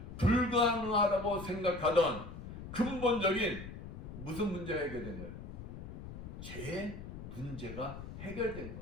불가능하다고 생각하던 근본적인 무슨 문제가 해결된 거예요? 죄의 문제가 해결된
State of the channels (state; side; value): noise; left; rumble, 10 dB below the sound